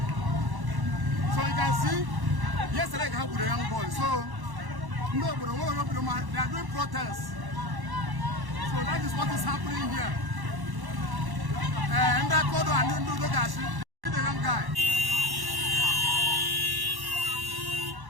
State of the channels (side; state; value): left; late; 1.1 ms